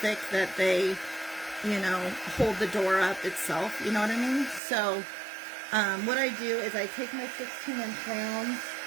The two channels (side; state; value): left; drops out; at 4.6 s